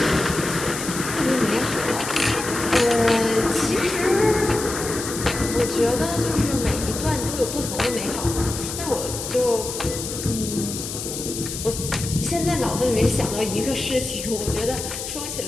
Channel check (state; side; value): noise; left; hiss, 7 dB below the sound